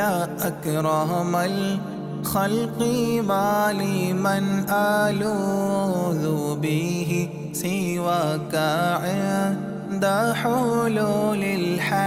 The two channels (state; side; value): identical; both; correlation 1.00